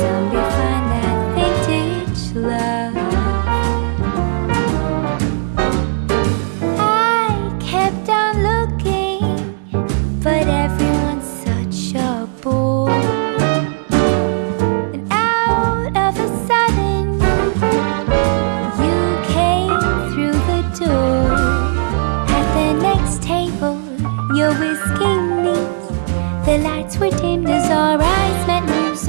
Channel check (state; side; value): silent; left; 65 dB below the other